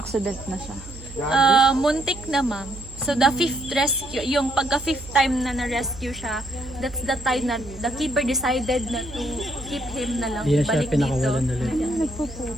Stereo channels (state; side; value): noise; right; hum, 16 dB below the sound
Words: na siya. Muntik na, ma'am. So, the 5th rescue, yung pagka 5th time na na-rescue siya, that's the time na the keeper decided na to keep him na lang. Hindi na siya Balik dito. pinakawalan ulit.